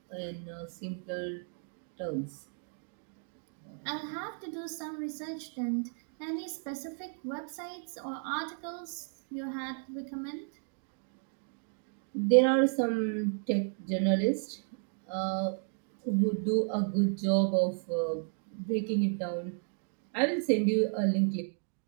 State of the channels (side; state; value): left; silent; 56 dB below the other